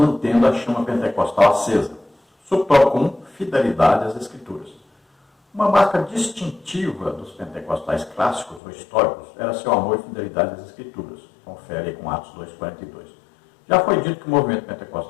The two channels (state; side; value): drops out; right; at 8.6 s